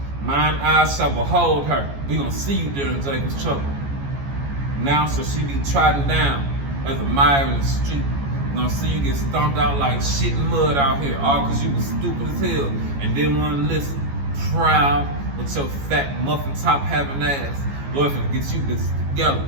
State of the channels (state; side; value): late; left; 14 ms